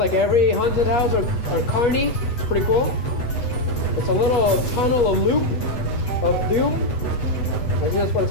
every haunted house or carny. It's pretty cool. It's a little tunnel, a loop of doom. I think that's what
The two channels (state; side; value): late; right; 8.0 ms